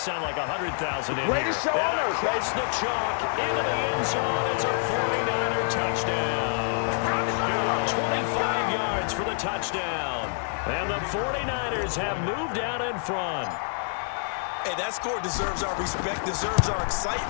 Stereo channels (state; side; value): silent; right; digital silence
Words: like 100,000 in Greatest here. show on And earth, across the chalk, into the end zone. It's a 49er touchdown. 25 yards for the touchdown. And the 49ers have moved out in front. Hey, that score deserves our respect, deserves our